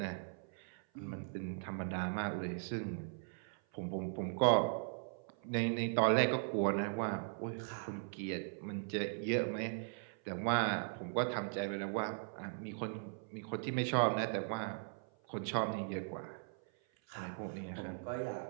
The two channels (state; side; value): silent; left; 52 dB below the other